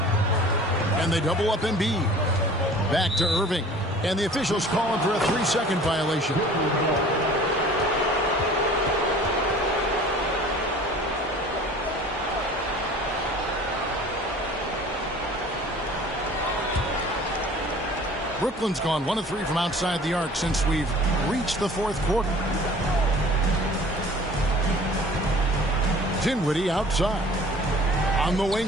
And they double up Embiid. Back to Irving. And the officials calling for a 3-second violation. Brooklyn's gone 1 of 3 from outside the arc since we've reached the 4th quarter. Dinwiddie outside. On the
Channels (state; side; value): normal; both; correlation 0.46